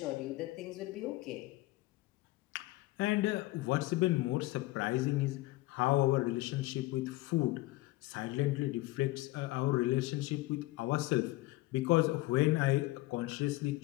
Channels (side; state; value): right; quieter; 19.4 dB